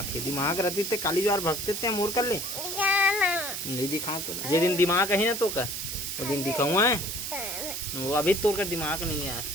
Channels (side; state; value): right; noise; hiss, 5 dB below the sound